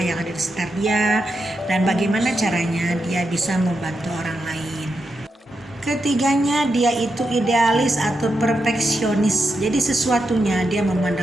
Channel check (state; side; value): normal; both; correlation 0.86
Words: yang ada di sekitar dia dan bagaimana caranya dia bisa membantu orang lain. Ketiganya, dia itu idealis atau perfeksionis. Jadi sesuatunya dia